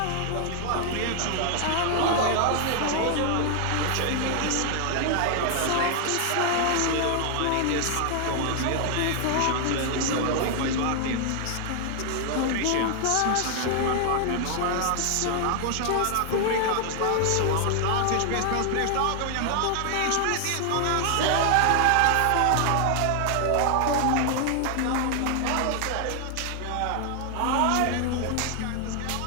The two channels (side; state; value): both; different; correlation 0.00